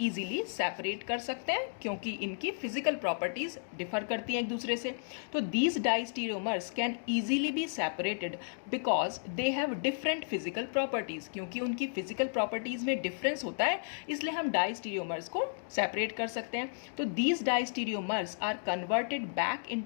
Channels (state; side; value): silent; right; digital silence